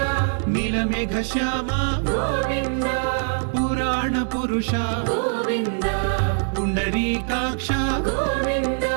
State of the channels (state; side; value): silent; left; digital silence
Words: నీలమేఘ శ్యామ గోవింద పురాణ పురుష గోవింద పుండరీకాక్ష గోవింద